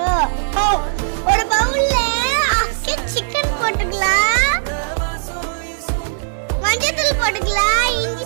ஒரு பவுல்ல சிக்கன் போட்டுக்கலாம், மஞ்சள் போட்டுக்கலாம்,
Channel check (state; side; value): silent; left; digital silence